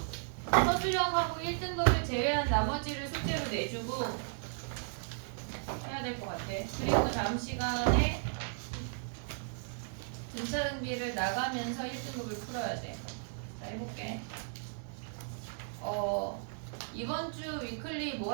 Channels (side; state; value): left; silent; digital silence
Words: 서술형하고 1등급을 제외한 나머지를 숙제로 내주고 해야 될 것 같아. 그리고 다음 시간에 등차등비를 나가면서 1등급을 풀어야 돼. 자, 해볼게. 이번 주 위클리